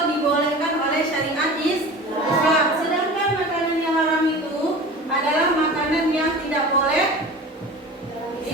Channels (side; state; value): both; normal; correlation 0.36